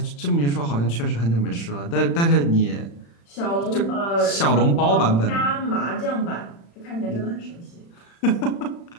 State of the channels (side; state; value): right; late; 35 ms